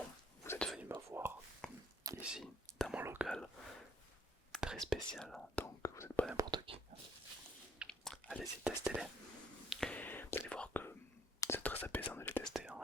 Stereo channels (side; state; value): both; normal; correlation 0.65